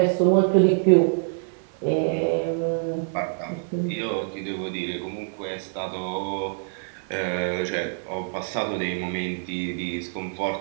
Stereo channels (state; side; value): silent; left; 61 dB below the other